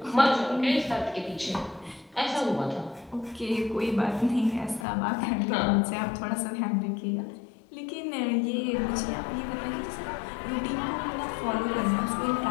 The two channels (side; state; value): right; drops out; at 4.9 s